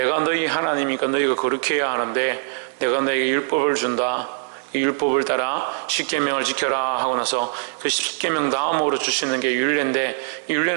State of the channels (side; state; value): left; silent; 64 dB below the other